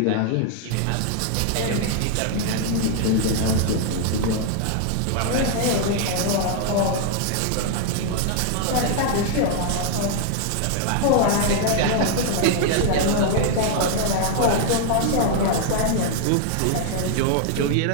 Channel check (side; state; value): both; different; correlation 0.00